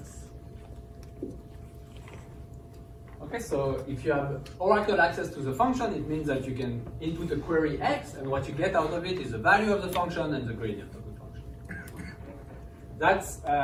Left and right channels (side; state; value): both; identical; correlation 1.00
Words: Okay, so if you have oracle access to the function, it means that you can input a query x, and what you get out of it is the value of the function and the gradient of the function. That's